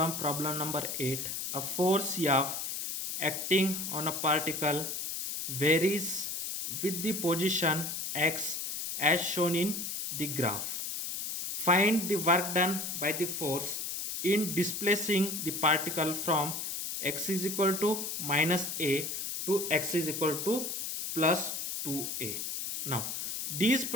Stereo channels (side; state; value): left; noise; hiss, 4 dB below the sound